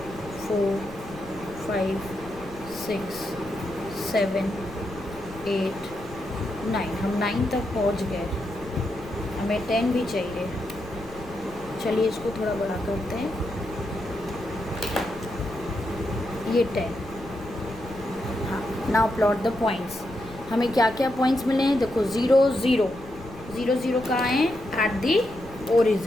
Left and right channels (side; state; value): left; noise; rumble, 17 dB below the sound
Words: 4 5 6 7 8 9, हम 9 तक पहुंच गए, हमें 10 भी चाहिए। चलिए इसको थोड़ा बड़ा करते हैं, ये 10। हाँ, नाउ प्लॉट द पॉइंट्स। हमें क्या क्या पॉइंट्स मिले हैं, देखो 0 0 0 0 कहाँ हैं, एट दी